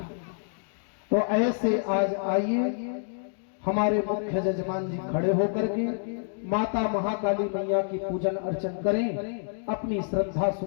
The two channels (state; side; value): silent; right; digital silence